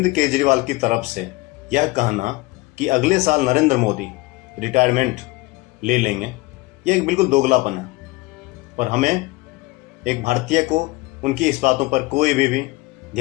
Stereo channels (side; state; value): right; quieter; 21.8 dB